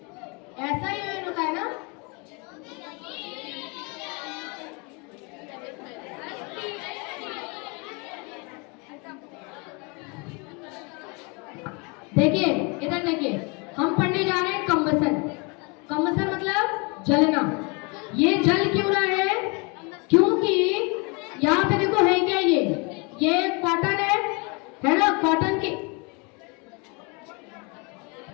ऐसा ही होता है ना। देखिए इधर देखिए, हम पढ़ने जा रहे हैं कंबसन। कंबसन मतलब जलना। ये जल क्यों रहा है? क्योंकि यहाँ पे देखो है क्या, ये कॉटन है ना, कॉटन की।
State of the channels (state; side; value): quieter; right; 30.8 dB